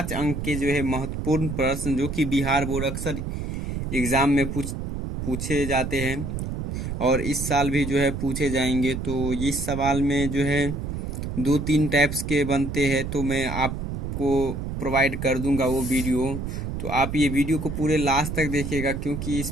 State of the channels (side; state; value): right; noise; rumble, 4 dB below the sound